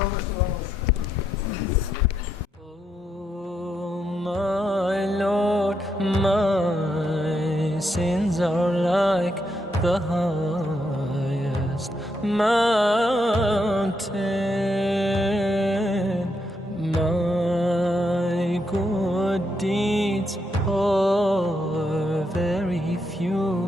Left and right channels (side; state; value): both; normal; correlation 0.80